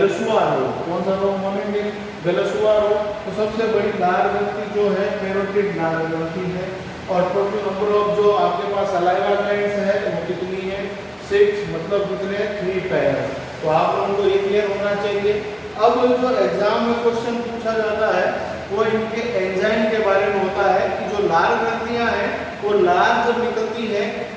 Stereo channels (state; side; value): identical; both; correlation 1.00